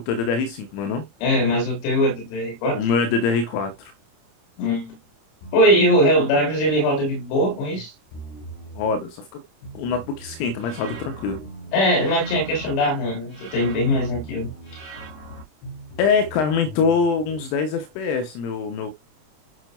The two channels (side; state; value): right; late; 26 ms